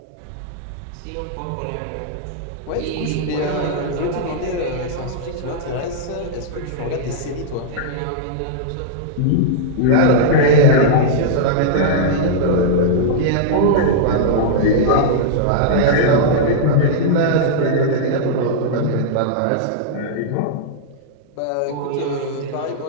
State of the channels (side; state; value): both; different; correlation -0.02